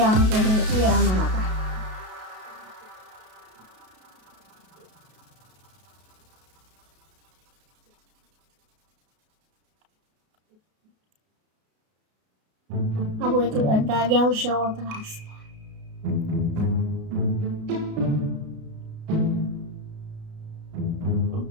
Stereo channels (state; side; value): late; left; 33 ms